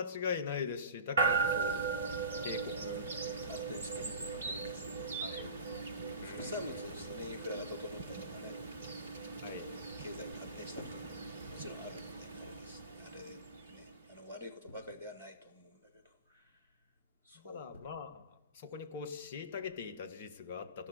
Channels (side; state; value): both; inverted; correlation -0.37